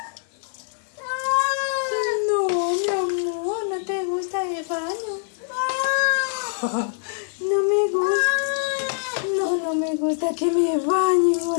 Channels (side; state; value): right; silent; 63 dB below the other